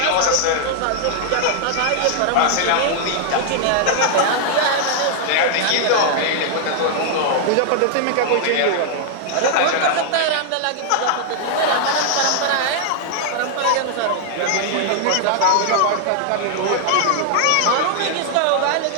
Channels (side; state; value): both; different; correlation -0.01